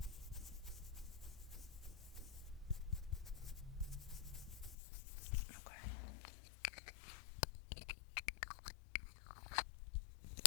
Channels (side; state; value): right; drops out; at 4.8 s